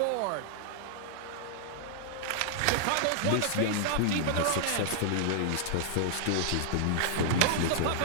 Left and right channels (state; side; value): different; both; correlation -0.01